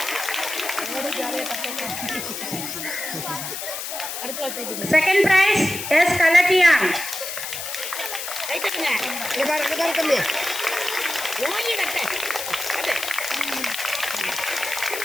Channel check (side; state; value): left; noise; hiss, 6 dB below the sound